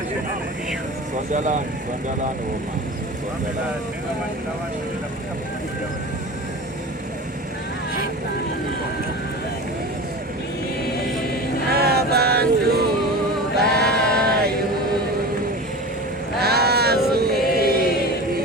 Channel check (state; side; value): normal; both; correlation 0.32